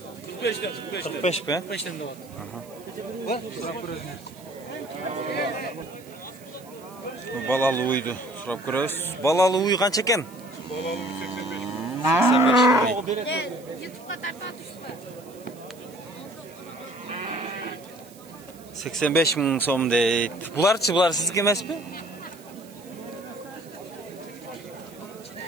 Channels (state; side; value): noise; right; hiss, 23 dB below the sound